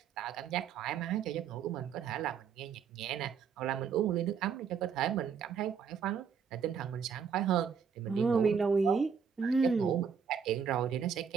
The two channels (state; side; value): quieter; left; 6.8 dB